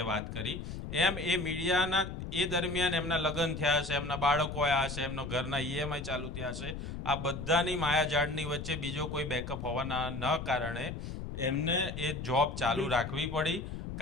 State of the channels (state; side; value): noise; left; rumble, 7 dB below the sound